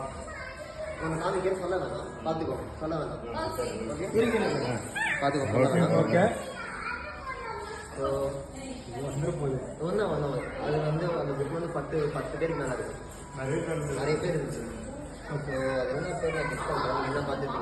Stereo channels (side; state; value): both; identical; correlation 1.00